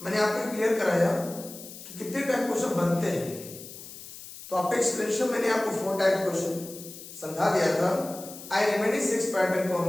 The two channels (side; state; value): left; noise; hiss, 14 dB below the sound